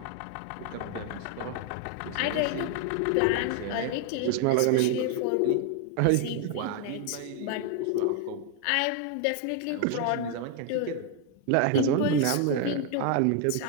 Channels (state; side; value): different; both; correlation 0.00